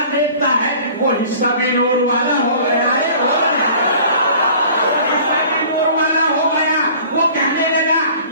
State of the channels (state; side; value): inverted; both; correlation -0.47